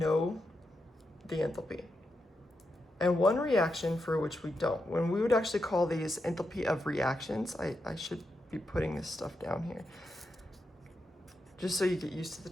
the enthalpy, and one reaction for which we don't. When we would actually call these enthalpy of reactions, I should be putting this stuff down here just so you get used to the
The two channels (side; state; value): both; normal; correlation 0.85